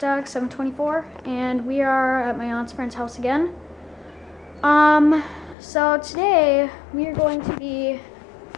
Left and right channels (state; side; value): drops out; right; at 5.6 s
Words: 724, and we are at my aunt's friend's house again. So today we are going to be